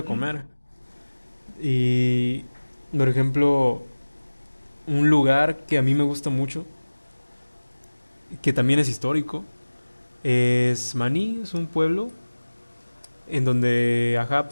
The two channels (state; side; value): inverted; both; correlation -1.00